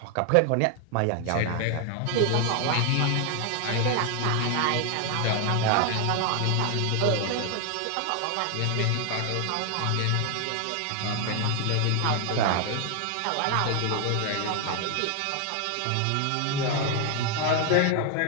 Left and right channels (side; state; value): both; different; correlation 0.00